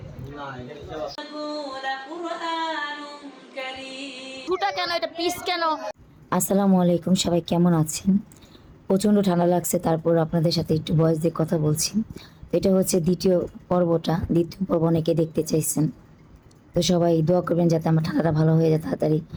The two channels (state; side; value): identical; both; correlation 1.00